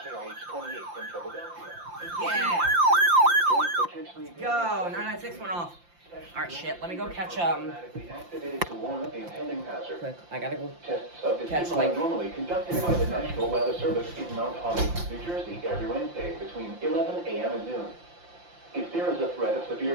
KIH28 in Philadelphia. Yeah! Potentially Go! 996 went off. Alright, shit. Let me go catch, activated to warn of the impending hazard. quick. I gotta go Tests of this catch, signal like... are normally conducted by the National Weather Service in Mount Holly, New Jersey, every Wednesday between 11 a.m. and noon. If there is a threat of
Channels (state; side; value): late; left; 5.8 ms